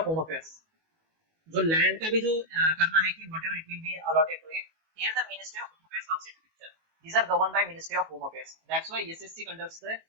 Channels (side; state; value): left; late; 19 ms